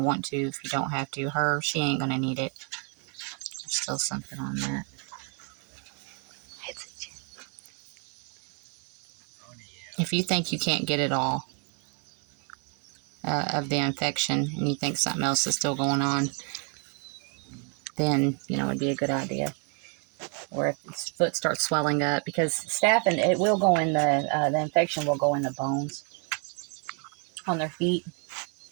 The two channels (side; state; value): left; quieter; 38.4 dB